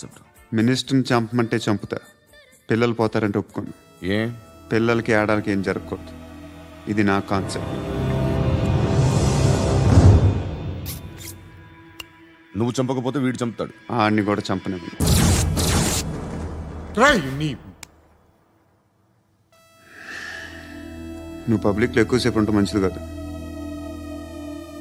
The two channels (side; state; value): both; identical; correlation 1.00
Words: మినిస్టర్ని చంపమంటే చంపుతా, పిల్లలు పోతారంటే ఒప్పుకోను. ఏ? పిల్లలకి ఆడాలకి ఏం జరగకూడదు. ఇది నా కాన్సెప్ట్. నువ్వు చంపకపోతే వీడు చంపుతాడు. ఆడిని కూడా చంపనివ్వను. నువ్వు పబ్లిక్లో ఎక్కువసేపు ఉంటే మంచిది కాదు.